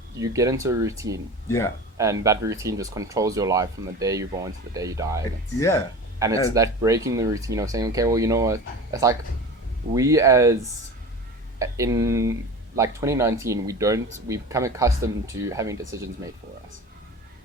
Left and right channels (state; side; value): normal; both; correlation 0.34